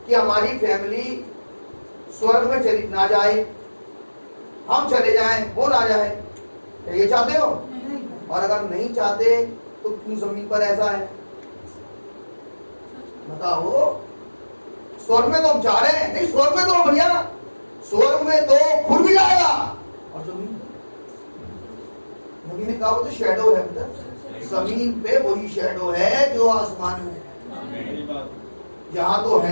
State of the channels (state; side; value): inverted; both; correlation -1.00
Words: कि हमारी फैमिली स्वर्ग में चली ना जाए, हम चले जाएं, वो ना जाए, क्या ये चाहते हो? और अगर नहीं चाहते तो क्यों जमीन पर ऐसा है? बताओ, स्वर्ग में तो हम चाह रहे हैं, नहीं स्वर्ग में तो भैया, स्वर्ग में तो खुद भी जाएगा, और जमीन नबी ने कहा वो तो शैडो है, जमीन पे वही शैडो है जो आसमान में है, यहाँ तो